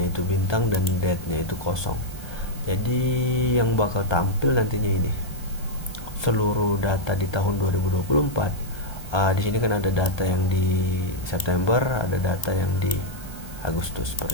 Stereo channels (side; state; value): right; late; 1.3 ms